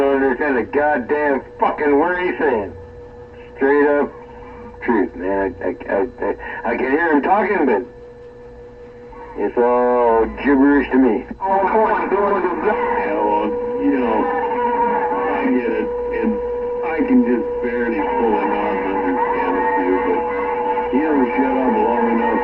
understand a goddamn fucking word he's saying. Straight up truth, man. I can hear him talking, but it's all gibberish to me. Yeah, well, I get it, and I can just barely pull him out and understand a few, but he don't shut up long enough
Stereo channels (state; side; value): identical; both; correlation 1.00